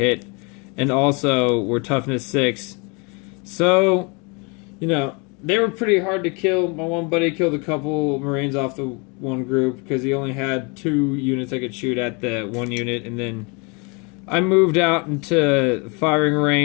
and also were toughness 6. So, they were pretty hard to kill. My one buddy killed a couple Marines off the one group because he only had 2 units I could shoot at the one unit, and then I moved out into firing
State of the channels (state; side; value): quieter; right; 31.4 dB